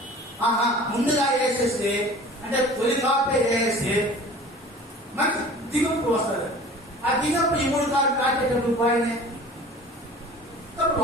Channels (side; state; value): both; normal; correlation 0.43